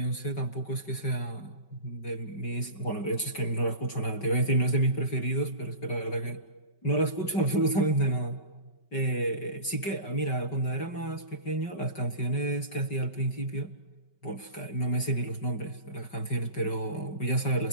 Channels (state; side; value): late; right; 5.2 ms